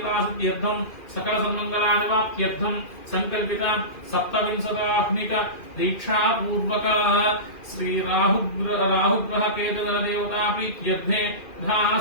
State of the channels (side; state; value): right; late; 2.4 ms